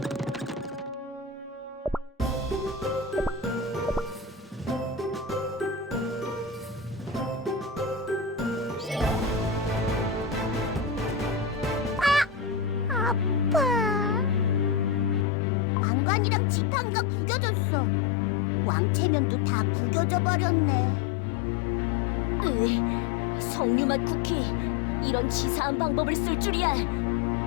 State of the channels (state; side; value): drops out; right; at 15.2 s